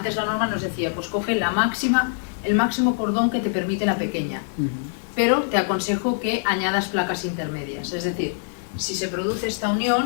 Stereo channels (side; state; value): right; silent; digital silence